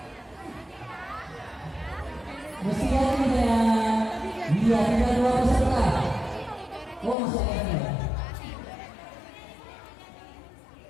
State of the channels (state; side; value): drops out; right; at 7.2 s